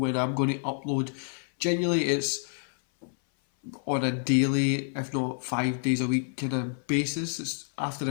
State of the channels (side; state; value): right; silent; 57 dB below the other